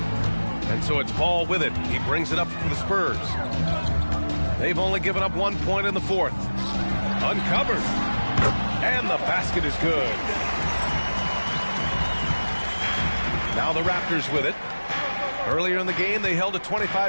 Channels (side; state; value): both; inverted; correlation -1.00